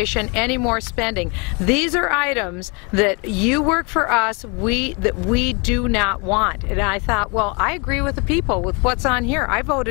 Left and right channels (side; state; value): right; quieter; 31.5 dB